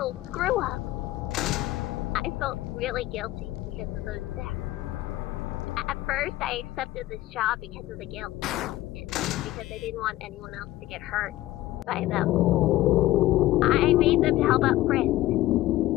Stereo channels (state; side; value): quieter; right; 16.2 dB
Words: screw-up. I felt really guilty because of those deaths. At first, I accepted this job because of the guilt, and because I didn't want anyone else to get hurt by them. I made them to help out Frisk.